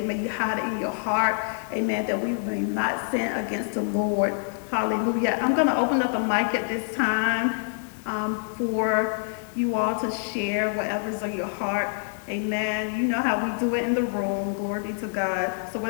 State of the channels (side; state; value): right; silent; digital silence